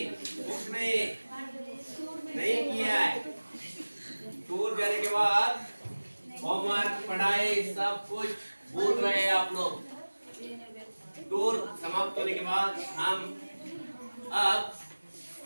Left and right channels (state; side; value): inverted; both; correlation -1.00